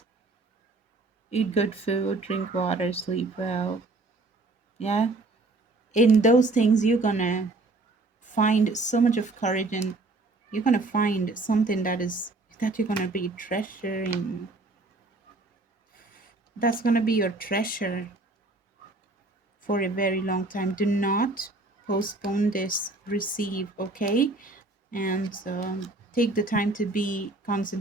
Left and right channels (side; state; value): left; quieter; 3.2 dB